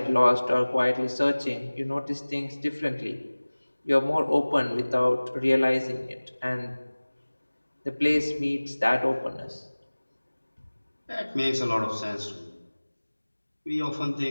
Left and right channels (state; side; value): inverted; both; correlation -1.00